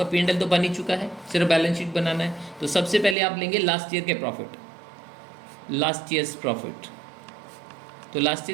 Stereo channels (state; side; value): drops out; left; at 3.2 s